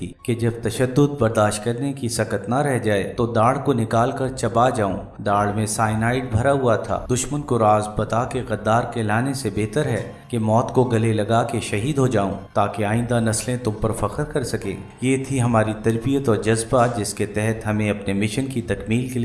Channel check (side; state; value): both; identical; correlation 1.00